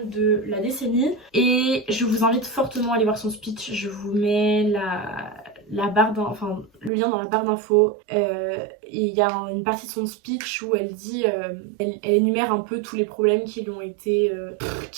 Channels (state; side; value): drops out; left; at 6.9 s